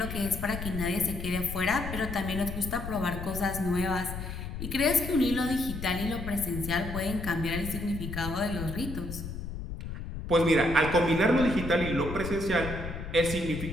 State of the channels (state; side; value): noise; left; rumble, 7 dB below the sound